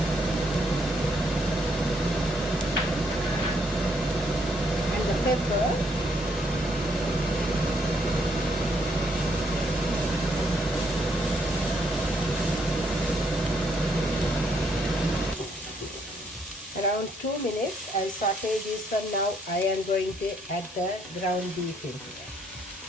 Pepper. Around 2 minutes, I'll saute this one. Now I am going to add the ground beef in here.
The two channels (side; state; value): both; normal; correlation 0.71